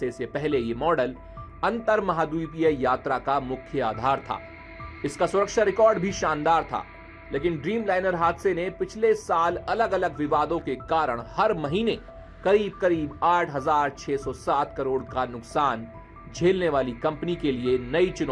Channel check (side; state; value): both; identical; correlation 1.00